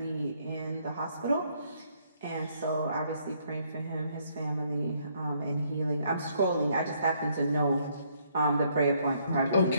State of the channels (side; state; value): both; inverted; correlation -0.69